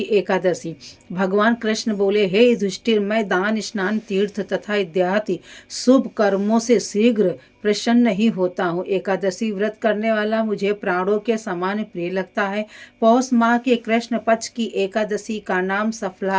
एकादशी। भगवान कृष्ण बोले, हे युधिष्ठिर, मैं दान, स्नान, तीर्थ तथा इत्यादि शुभ कर्मों से शीघ्र प्रसन्न नहीं होता हूँ। एकादशी व्रत करने वाला मुझे प्राणों के समान प्रिय लगता है। पौष माह के कृष्ण पक्ष की एकादशी का नाम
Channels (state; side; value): identical; both; correlation 1.00